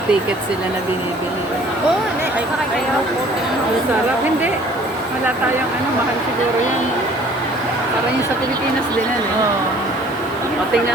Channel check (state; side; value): noise; right; hiss, 24 dB below the sound